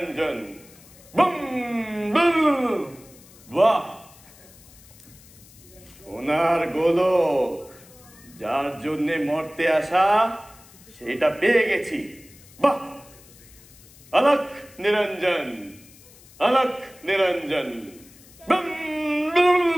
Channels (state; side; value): noise; left; hiss, 23 dB below the sound